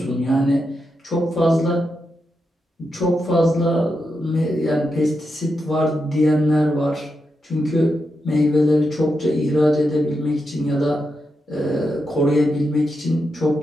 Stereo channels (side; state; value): both; normal; correlation 0.86